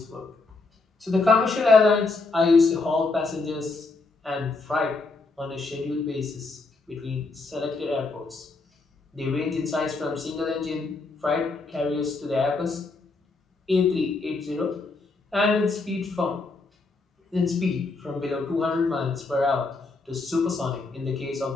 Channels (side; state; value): right; quieter; 3.7 dB